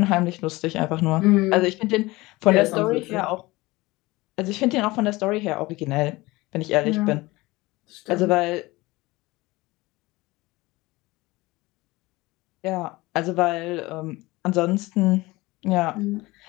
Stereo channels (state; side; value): quieter; right; 21.0 dB